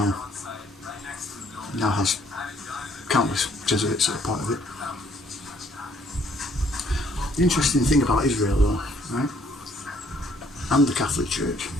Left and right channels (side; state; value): both; normal; correlation 0.64